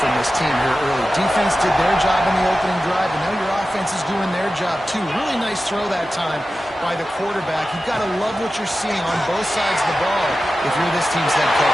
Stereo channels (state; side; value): normal; both; correlation 0.94